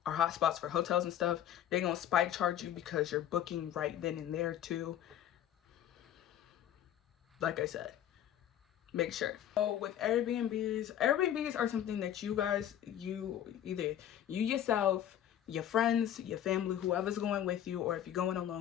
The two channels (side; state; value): right; quieter; 10.9 dB